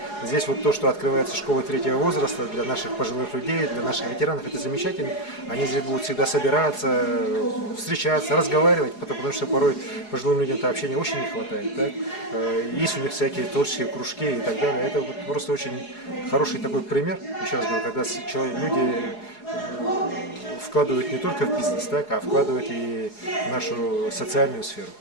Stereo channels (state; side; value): late; right; 4.8 ms